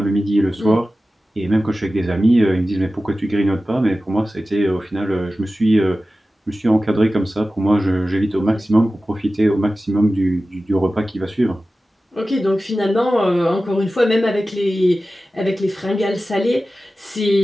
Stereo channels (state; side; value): normal; both; correlation 0.95